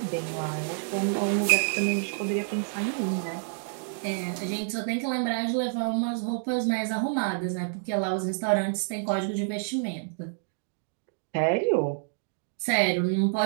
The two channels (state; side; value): silent; left; digital silence